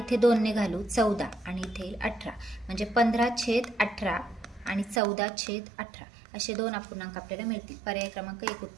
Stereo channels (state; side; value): drops out; left; at 5.0 s